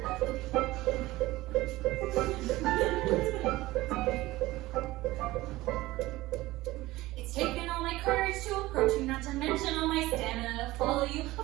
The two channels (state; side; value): quieter; left; 18.3 dB